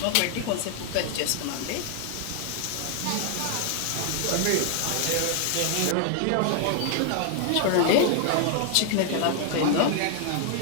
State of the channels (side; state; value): both; different; correlation 0.00